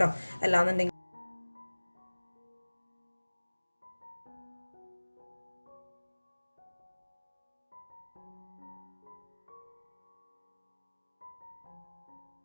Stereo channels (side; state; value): both; inverted; correlation -1.00